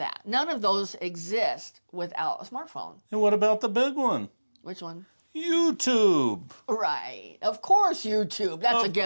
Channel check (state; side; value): inverted; both; correlation -1.00